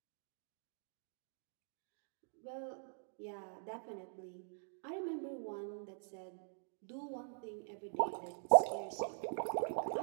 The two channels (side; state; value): left; silent; digital silence